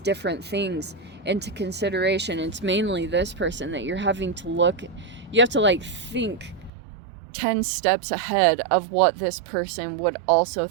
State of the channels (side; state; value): left; drops out; at 6.7 s